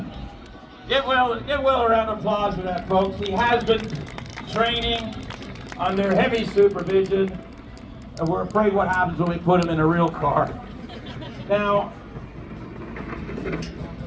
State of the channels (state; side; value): identical; both; correlation 1.00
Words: to give Will a round of applause for that, folks. He has been training under heavy supervision, and we're afraid what happens when we put him in a real car. Now,